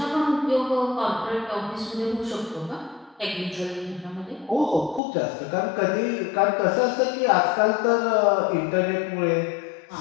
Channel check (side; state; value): right; drops out; at 5.0 s